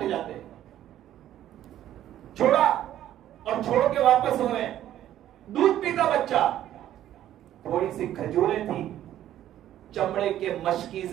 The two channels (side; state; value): left; quieter; 12.1 dB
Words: جاتے. چھوڑا اور چھوڑ کے واپس ہو رہے ہیں. دودھ پیتا بچہ. تھوڑی سی کھجوریں تھی، چمڑے کے